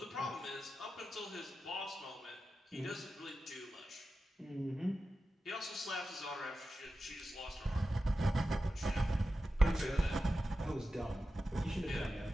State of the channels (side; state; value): both; normal; correlation 0.93